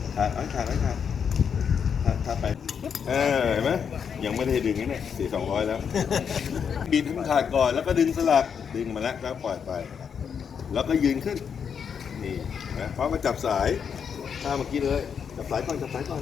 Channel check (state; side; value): quieter; right; 7.1 dB